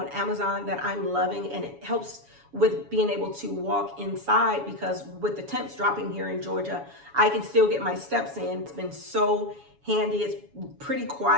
Amazon that I'm loving, and it helps with being able to walk inside because with the temps dropping here in Georgia, I can still get my steps in. It's been so handy. It's pretty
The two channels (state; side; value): late; left; 7.1 ms